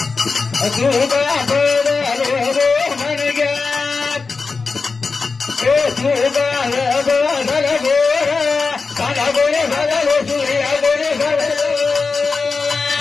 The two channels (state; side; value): quieter; right; 4.4 dB